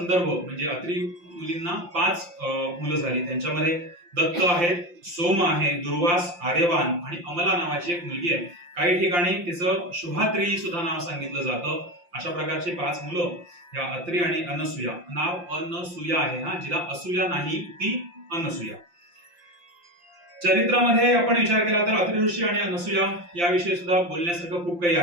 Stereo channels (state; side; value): late; left; 5.8 ms